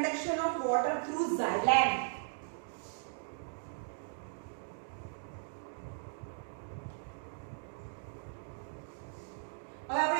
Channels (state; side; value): silent; left; digital silence